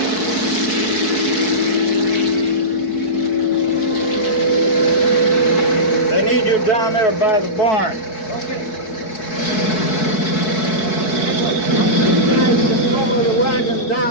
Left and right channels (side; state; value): right; late; 4.6 ms